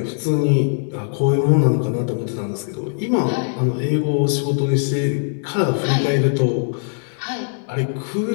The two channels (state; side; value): silent; right; digital silence